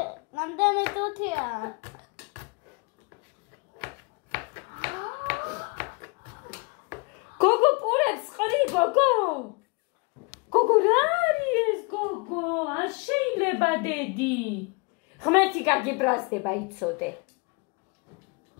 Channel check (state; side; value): quieter; right; 30.6 dB